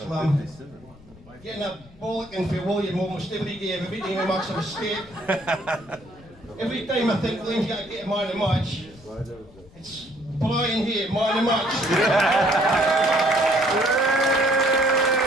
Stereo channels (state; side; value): noise; left; rumble, 24 dB below the sound